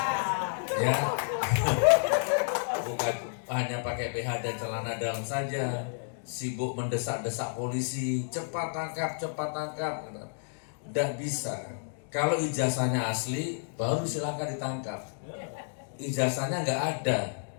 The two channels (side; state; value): right; silent; digital silence